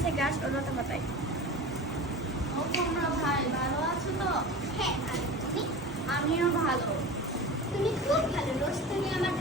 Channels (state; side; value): normal; both; correlation 0.32